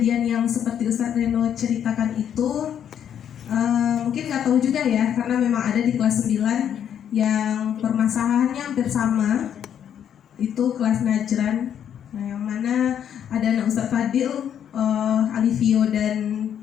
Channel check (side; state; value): right; quieter; 9.2 dB